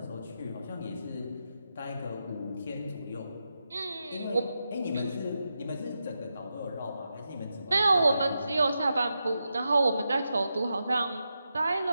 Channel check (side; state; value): both; inverted; correlation -0.87